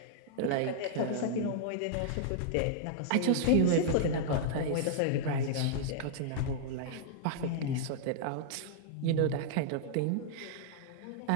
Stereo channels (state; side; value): different; both; correlation -0.01